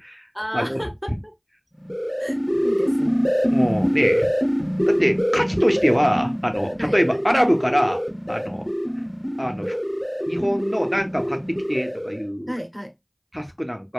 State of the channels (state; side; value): identical; both; correlation 1.00